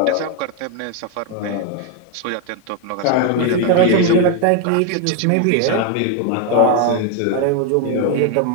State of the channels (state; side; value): different; both; correlation 0.01